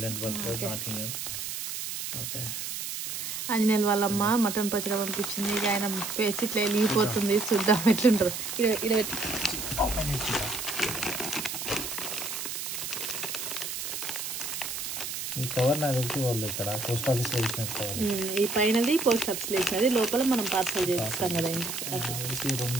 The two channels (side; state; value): right; noise; hiss, 5 dB below the sound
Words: నాటింగం. ఓకే. ఆంజనేయులు వాళ్ళమ్మ మటన్ పచ్చడి పంపించింది. ఇక ఆయన పేసి ఇట్లా వెళ్ళిపోతుంది. చూద్దాం ఎట్లుంటుంది. ఈ కవర్ నాకు తెలిసి వాళ్ళు ఇక్కడ పోస్ట్ ఆఫీస్ లో వేసినట్టు కవర్. ఈ పైనది పోస్ట్ ఆఫీస్ లో వేసినది, లోపల మనం పార్సల్ చేపిస్తాం కదా.